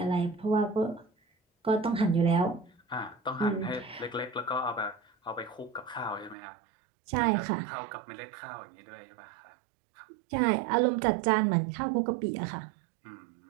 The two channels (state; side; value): drops out; left; at 6.4 s